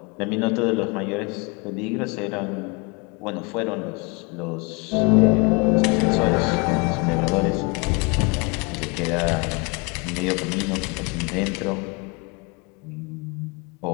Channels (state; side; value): quieter; right; 30.1 dB